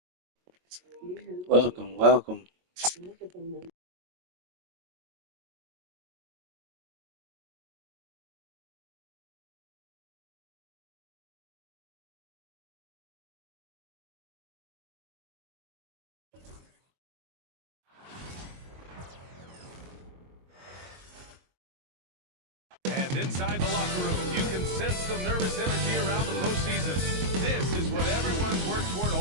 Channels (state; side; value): late; left; 22 ms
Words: Welcome, welcome. And inside the locker room, you can sense the nervous energy around the postseason. This is what everyone's worked toward